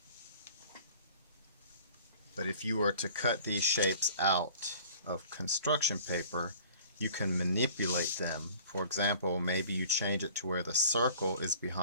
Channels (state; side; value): inverted; both; correlation -0.48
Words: But if you were to cut these shapes out of construction paper, you can manipulate them. For example, maybe you change it to where the circle is